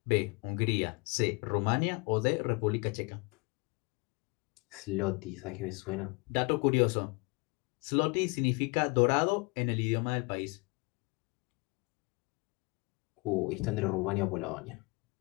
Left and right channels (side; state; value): right; quieter; 28.6 dB